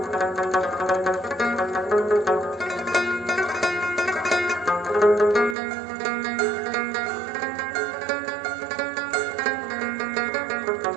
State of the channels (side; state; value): left; drops out; at 5.6 s